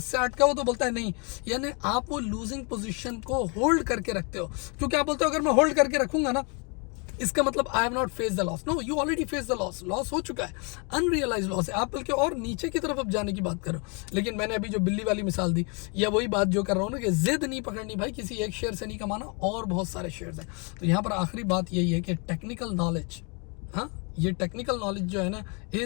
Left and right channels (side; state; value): right; quieter; 33.8 dB